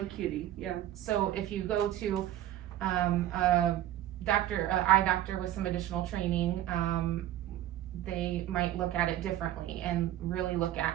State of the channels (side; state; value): left; quieter; 13.0 dB